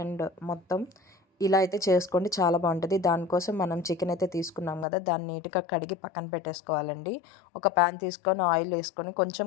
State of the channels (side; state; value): right; drops out; at 4.9 s